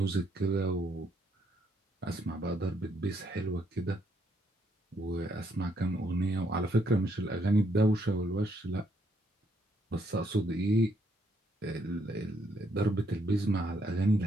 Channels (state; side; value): normal; both; correlation 0.73